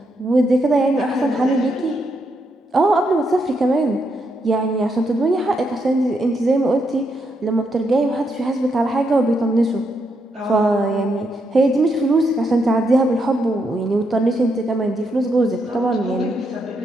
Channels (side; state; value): both; normal; correlation 0.79